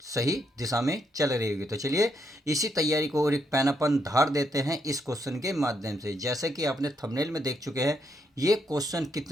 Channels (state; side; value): normal; both; correlation 0.77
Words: सही दिशा में चल रही होगी। तो चलिए इसी तैयारी को और एक पैन अपन धार देते हैं इस क्वेश्चन के माध्यम से। जैसे कि आपने थंबनेल में देख चुके हैं, ये क्वेश्चन